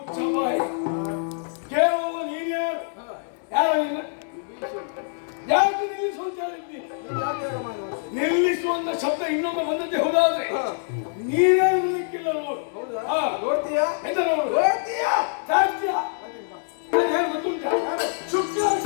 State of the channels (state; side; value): silent; right; digital silence